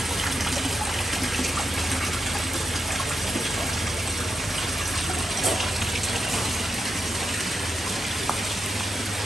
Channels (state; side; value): normal; both; correlation 0.83